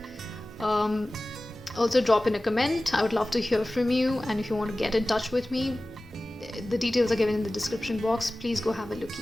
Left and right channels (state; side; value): normal; both; correlation 0.97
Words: Also drop in a comment. I would love to hear from you, and if you want to get in touch with me, the details are given in the description box. Please go have a